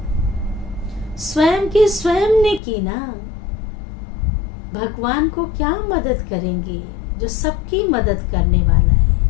स्वयं की स्वयं ने की ना। भगवान को क्या मदद करेंगे जो सबकी मदद करने वाला है।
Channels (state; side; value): drops out; right; at 2.6 s